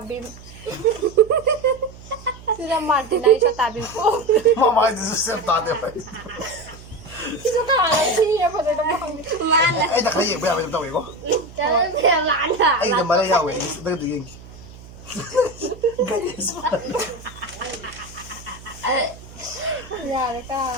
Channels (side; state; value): right; noise; hum, 18 dB below the sound